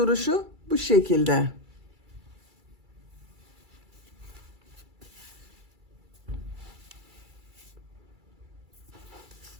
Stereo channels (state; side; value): late; left; 2.3 ms